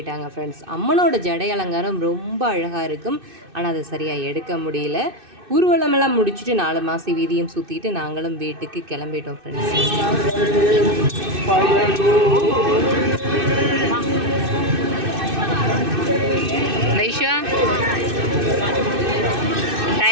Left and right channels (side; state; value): left; late; 2.6 ms